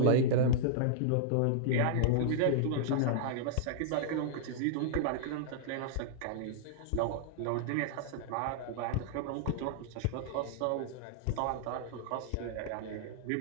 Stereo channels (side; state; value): both; different; correlation -0.01